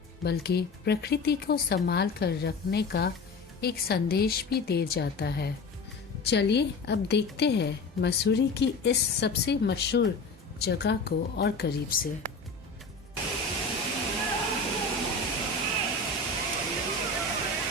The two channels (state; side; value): quieter; right; 3.7 dB